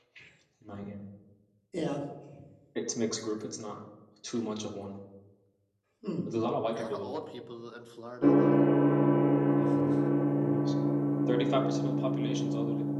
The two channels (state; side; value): identical; both; correlation 1.00